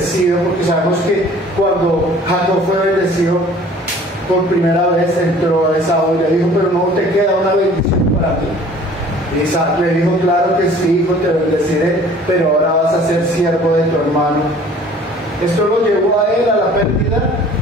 porque sabemos que cuando Jacob fue bendecido por primera vez, entró a Esaú y le dijo: pero no te queda una bendición para mí. Y Isaac le dijo: claro que sí, hijo, te bendeciré, pero ahora vas a ser siervo de tu hermano. Esto lo llevó a él a la pérdida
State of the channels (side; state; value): both; normal; correlation 0.50